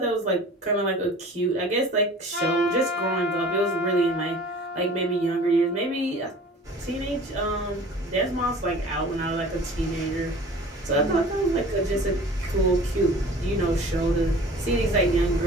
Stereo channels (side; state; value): both; normal; correlation 0.44